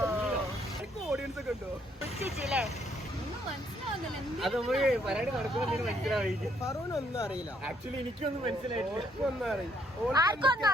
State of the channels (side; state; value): both; normal; correlation 0.69